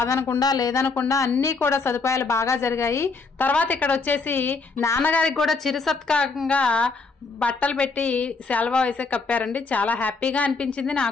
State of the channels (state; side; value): quieter; right; 4.2 dB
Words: లేదనకుండా అన్ని కూడా సదుపాయాలు బాగా జరిగాయి. తర్వాత ఇక్కడ వచ్చేసి నాన్నగారికి కూడా చిరు సత్కారంగా బట్టలు పెట్టి సెలవు వేసే కప్పారండి. చాలా హ్యాపీగా అనిపించింది